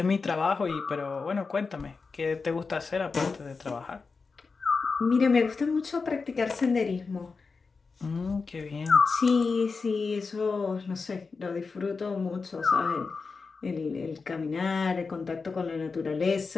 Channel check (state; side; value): quieter; right; 4.6 dB